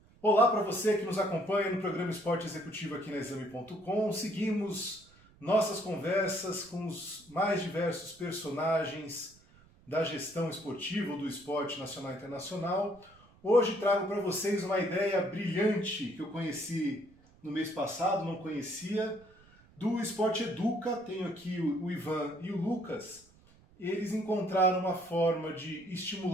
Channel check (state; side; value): noise; right; rumble, 27 dB below the sound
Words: Olá para você que nos acompanha no programa Esporte Executivo aqui na Exame.com. Seguimos nossas conversas com os mais diversos personagens da gestão esportiva ou do esporte nacional e internacional. Hoje trago para vocês uma ideia brilhante que eu conheci no mês passado, não conhecia, do Esporte Educa. Tenho aqui o Ivan e o Lucas. Eles encontraram uma forma de